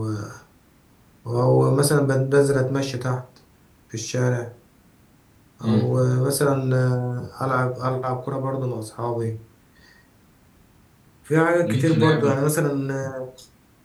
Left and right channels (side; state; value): both; identical; correlation 1.00